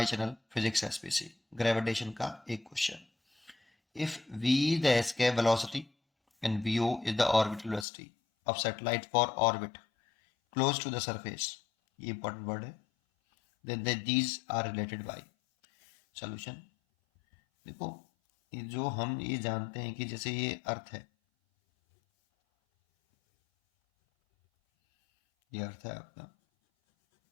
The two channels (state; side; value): drops out; right; at 7.9 s